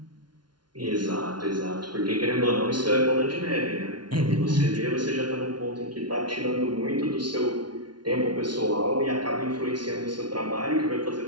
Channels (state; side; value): late; left; 0.70 ms